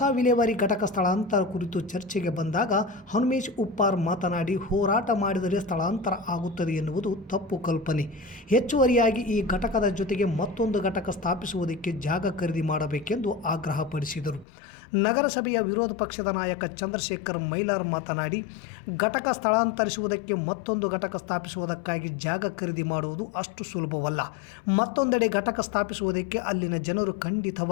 ವಿಲೇವಾರಿ ಘಟಕ ಸ್ಥಳಾಂತರ ಕುರಿತು ಚರ್ಚೆಗೆ ಬಂದಾಗ ಹನುಮೇಶ್ ಉಪ್ಪಾರ್ ಮಾತನಾಡಿ, ಹೋರಾಟ ಮಾಡಿದರೆ ಸ್ಥಳಾಂತರ ಆಗುತ್ತದೆ ಎನ್ನುವುದು ತಪ್ಪು ಕಲ್ಪನೆ. ಹೆಚ್ಚುವರಿಯಾಗಿ ಈ ಘಟಕದ ಜೊತೆಗೆ ಮತ್ತೊಂದು ಘಟಕ ಸ್ಥಾಪಿಸುವುದಕ್ಕೆ ಜಾಗ ಖರೀದಿ ಮಾಡಬೇಕೆಂದು ಆಗ್ರಹಪಡಿಸಿದರು. ನಗರಸಭೆಯ ವಿರೋಧ ಪಕ್ಷದ ನಾಯಕ ಚಂದ್ರಶೇಖರ್ ಮೈಲಾರ್ ಮಾತನಾಡಿ, ಘಟಕ ಸ್ಥಳಾಂತರಿಸುವುದಕ್ಕೆ ಮತ್ತೊಂದು ಘಟಕ ಸ್ಥಾಪಿಸುವುದಕ್ಕಾಗಿ ಜಾಗ ಖರೀದಿ ಮಾಡುವುದು ಅಷ್ಟು ಸುಲಭವಲ್ಲ. ಮತ್ತೊಂದೆಡೆ ಘಟಕ ಸ್ಥಾಪಿಸುವುದಕ್ಕೆ ಅಲ್ಲಿನ ಜನರು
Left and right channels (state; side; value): drops out; right; at 14.5 s